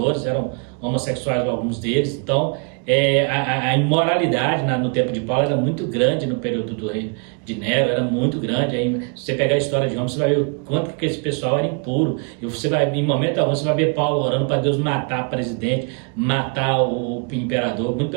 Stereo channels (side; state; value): left; quieter; 38.0 dB